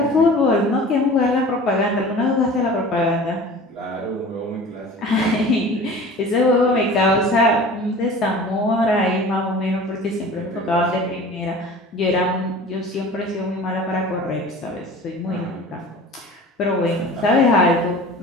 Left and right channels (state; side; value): normal; both; correlation 0.41